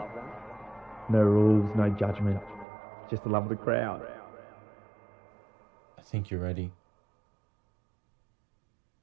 No rules, no judgment, just the love of the crowd. I think you're ready.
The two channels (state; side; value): drops out; left; at 2.7 s